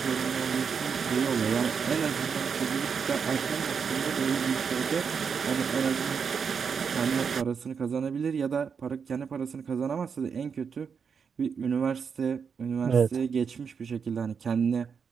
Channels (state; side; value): quieter; left; 6.3 dB